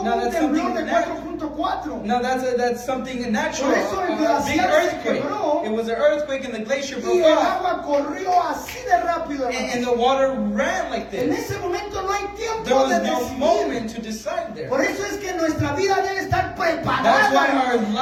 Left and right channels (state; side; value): identical; both; correlation 1.00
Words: No, un that's temblor de something natural. 4.4. No, that's something natural. Por eso el A big glaciar se earthquake. quebró. It was an earthquake, and the glacier Y broke el off, agua corrió así de rápido. and hermano. the water ran like En this. ese momento no hay There tiempo was de no decidir. moment to decide there. Por eso es que nuestra vida debe estar That's preparada. why hermano. our